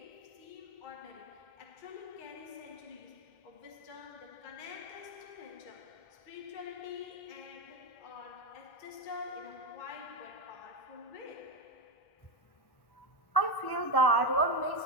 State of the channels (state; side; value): late; right; 1.1 ms